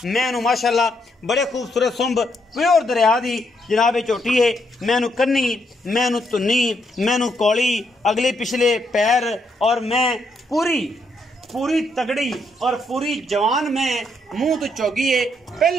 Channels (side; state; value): both; normal; correlation 0.76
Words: मैं उन्हें माशाल्लाह बड़े खूबसूरत सुंब प्योर दरिया दी जनाब झोटी है। मैं उन्हें कन्नी मैं उन्हें धुन्नी मैं उन्हें कौली अगले पिछले पैर और मैं पूरी तगड़ी और पूरी जवान में मुंह तो चौगी है।